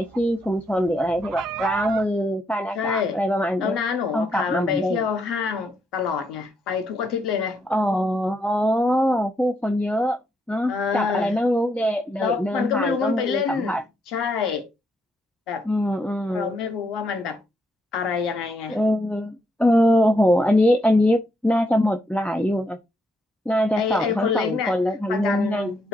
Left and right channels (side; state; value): both; normal; correlation 0.77